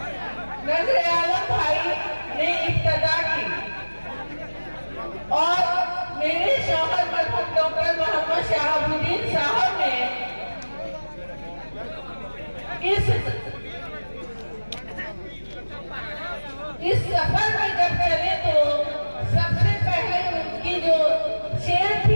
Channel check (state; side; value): inverted; both; correlation -1.00